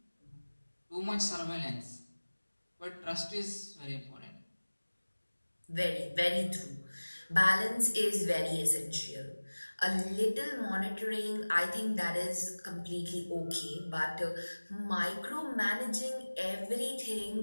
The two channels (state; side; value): inverted; both; correlation -1.00